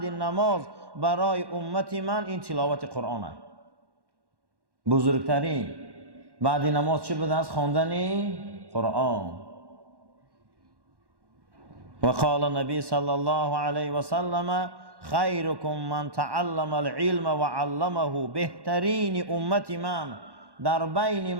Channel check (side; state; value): left; late; 1.1 ms